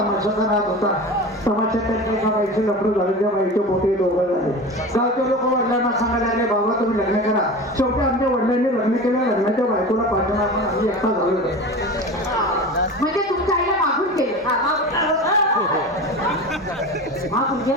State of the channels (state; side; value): normal; both; correlation 0.31